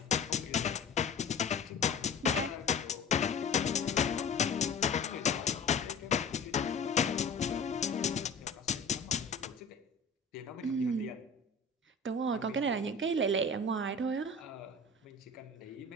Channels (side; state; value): right; quieter; 3.6 dB